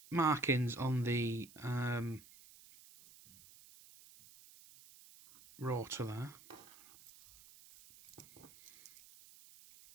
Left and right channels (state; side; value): noise; right; hiss, 21 dB below the sound